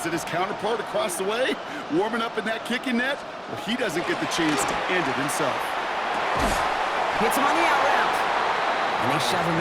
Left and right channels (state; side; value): identical; both; correlation 1.00